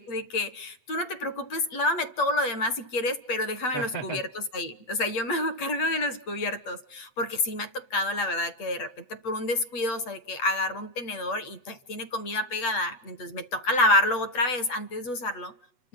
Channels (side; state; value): right; late; 8.1 ms